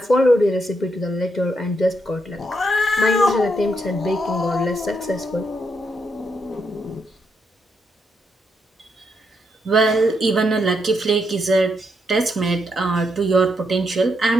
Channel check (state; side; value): normal; both; correlation 0.79